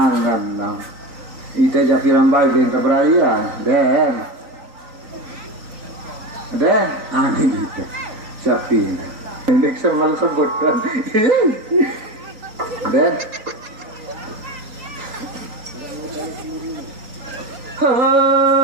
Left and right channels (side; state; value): left; late; 3.9 ms